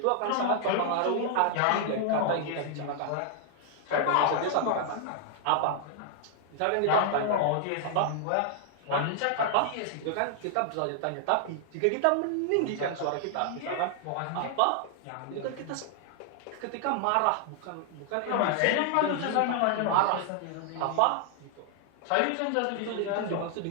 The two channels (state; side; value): different; both; correlation 0.00